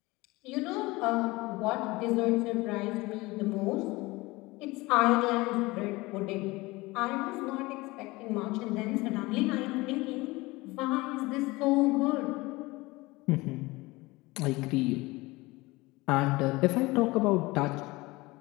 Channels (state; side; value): quieter; right; 21.8 dB